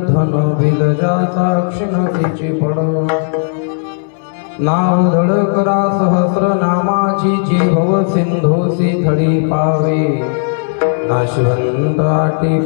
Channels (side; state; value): right; silent; digital silence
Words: धन बिलजाचा क्षिणतीची पड नाव धड करा सहस्र नामाची जी भव सिंधोसी थडी पावे नाशिवंत आटी